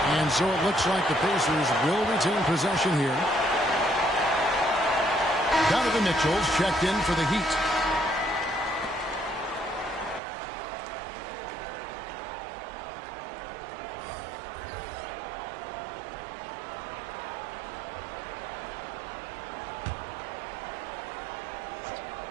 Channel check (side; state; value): left; drops out; at 10.2 s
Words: And so it looks like the Pacers will retain possession here. Donovan Mitchell's checked in for the Heat.